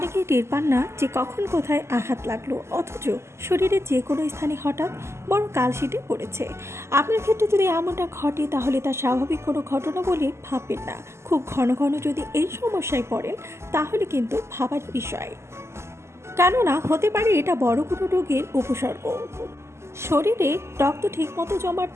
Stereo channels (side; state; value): left; late; 0.13 ms